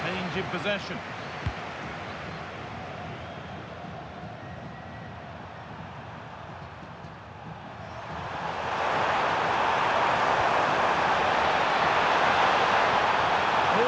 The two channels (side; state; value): both; identical; correlation 1.00